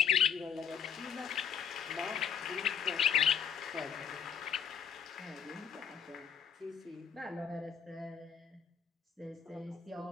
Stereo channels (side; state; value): right; quieter; 7.7 dB